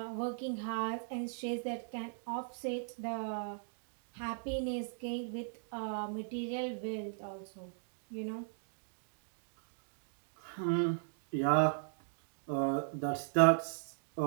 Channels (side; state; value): left; silent; digital silence